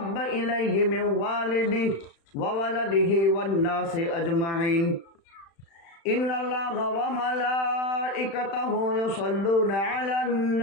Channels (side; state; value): right; late; 36 ms